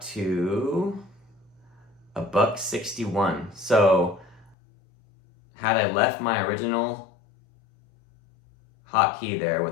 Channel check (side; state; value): right; drops out; at 4.5 s